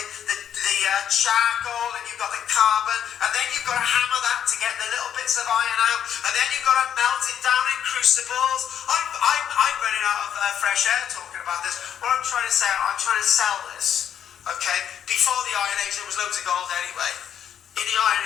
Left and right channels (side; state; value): right; quieter; 9.3 dB